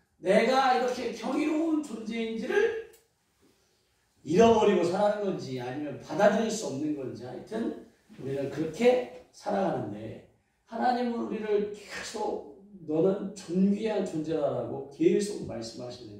내가 이렇게 경이로운 존재인지를 잃어버리고 살아가는 건지 아니면 받아들일 수 없는 건지 하여튼 우리는 그렇게 살아가는데 하나님은 우리를 계속 너는 존귀한 존재라고 계속 말씀하시는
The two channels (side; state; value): both; identical; correlation 1.00